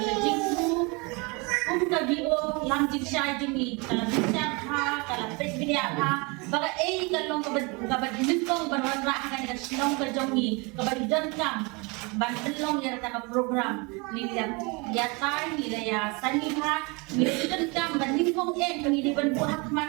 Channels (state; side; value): quieter; left; 28.8 dB